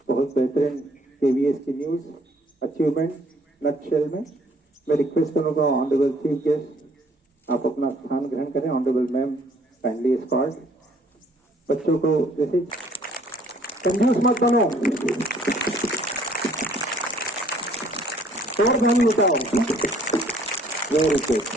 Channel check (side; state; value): both; normal; correlation 0.60